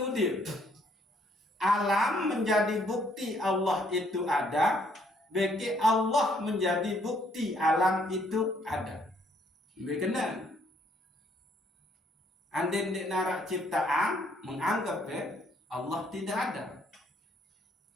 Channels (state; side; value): normal; both; correlation 0.67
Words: Alam menjadi bukti Allah itu ada, bagi Allah menjadi bukti alam itu ada. Bekenal. Andai di narak ciptaan menganggap Allah tidak ada.